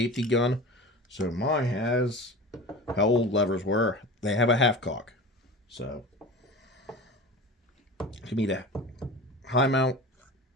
gun, so mine has how old levers were. They have a half cock. So, to me, the high mount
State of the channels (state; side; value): normal; both; correlation 0.33